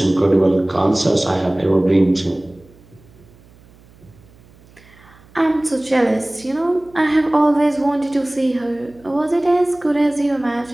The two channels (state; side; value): noise; right; hum, 27 dB below the sound